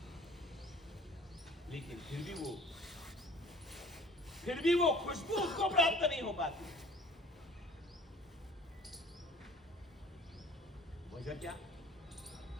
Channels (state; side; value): normal; both; correlation 0.48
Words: लेकिन फिर भी वो खुशबू उसको प्राप्त नहीं हो पाती। वजह क्या?